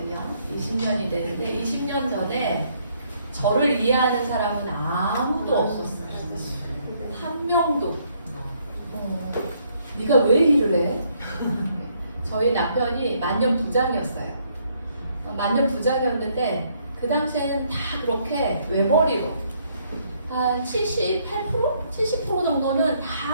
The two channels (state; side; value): inverted; both; correlation -0.69